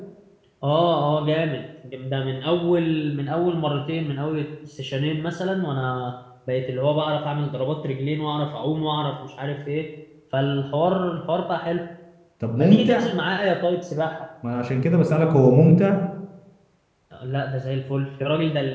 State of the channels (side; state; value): both; identical; correlation 1.00